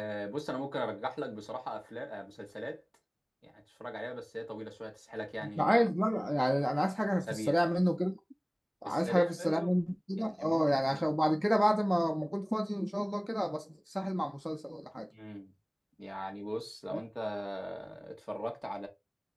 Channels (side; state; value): both; identical; correlation 1.00